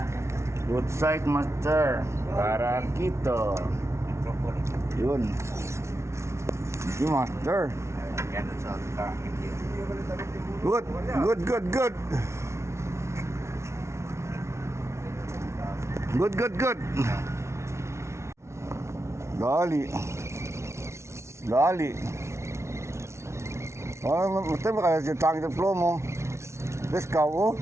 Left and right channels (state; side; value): late; left; 0.13 ms